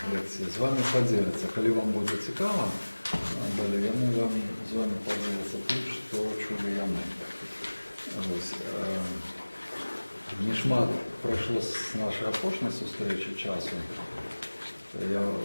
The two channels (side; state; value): both; inverted; correlation -1.00